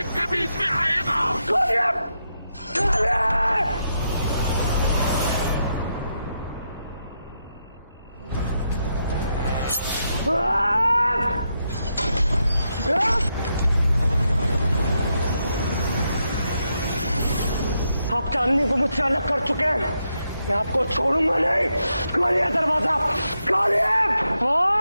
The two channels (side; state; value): both; inverted; correlation -0.82